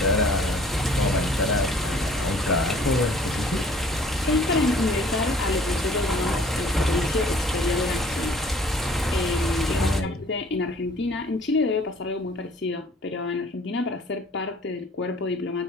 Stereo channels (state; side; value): normal; both; correlation 0.54